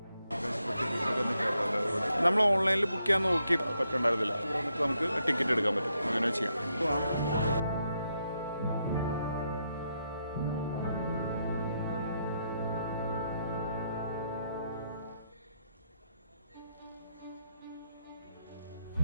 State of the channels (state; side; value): inverted; both; correlation -0.80